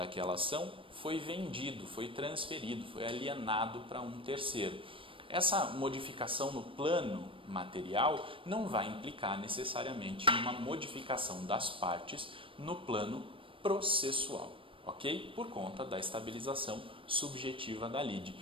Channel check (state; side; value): late; left; 0.25 ms